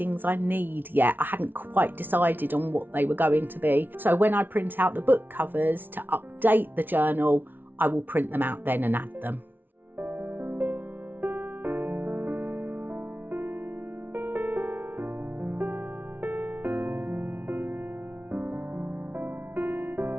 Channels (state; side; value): late; left; 0.094 ms